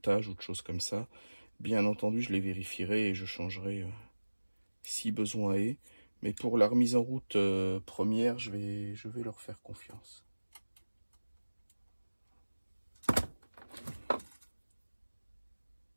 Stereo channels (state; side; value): inverted; both; correlation -1.00